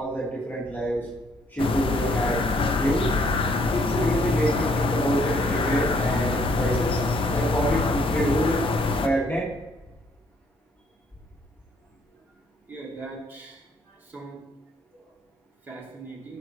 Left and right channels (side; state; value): both; normal; correlation 0.67